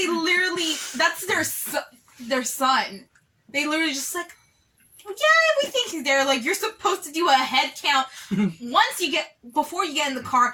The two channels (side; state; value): both; identical; correlation 1.00